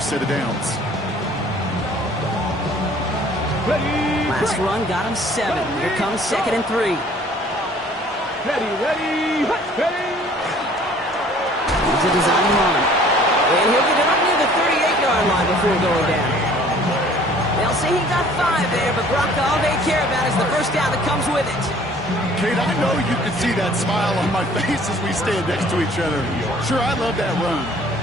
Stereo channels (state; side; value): normal; both; correlation 0.54